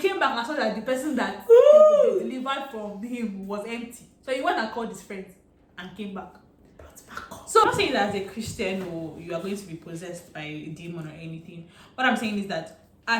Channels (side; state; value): both; identical; correlation 1.00